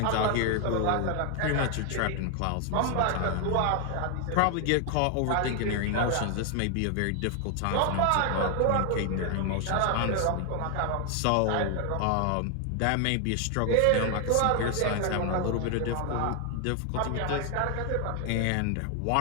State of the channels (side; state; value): both; different; correlation 0.00